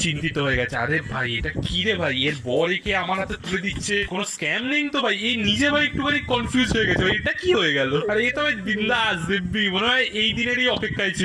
চিন্তিত হয়ে গেছে, আরে ভাই এটা কি রে ভাই, এর বর একে আমার হাতে তুলে দিচ্ছে, কোনো স্ক্যাম নেই তো ভাই? এই নিজে ভাই একটুখানি কনফিউজ হয়ে গেছে ভাই, এটা কি হয়ে গেল? আর এ তো ভাই বিন্দাস দিব্যি, মনে হয় এই দিনেরই অপেক্ষায়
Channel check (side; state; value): both; identical; correlation 1.00